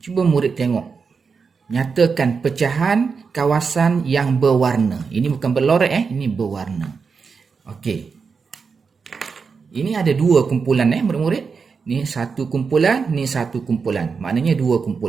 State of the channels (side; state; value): left; quieter; 5.3 dB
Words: cuba murid tengok. Nyatakan pecahan kawasan yang berwarna. Ini bukan berlorek ini berwarna. Okey. Ini ada dua kumpulan murid-murid. Ni satu kumpulan, ni satu kumpulan. Maknanya dua